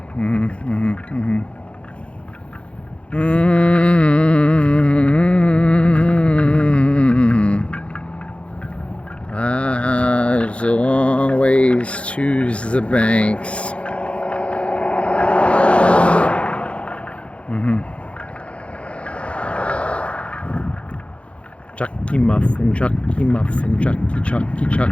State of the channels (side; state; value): right; late; 0.061 ms